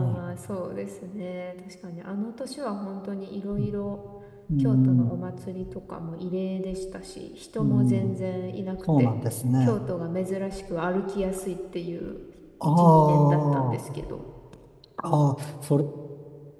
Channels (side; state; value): both; identical; correlation 1.00